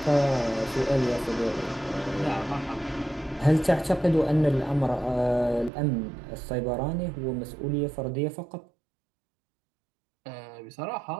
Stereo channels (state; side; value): drops out; left; at 5.7 s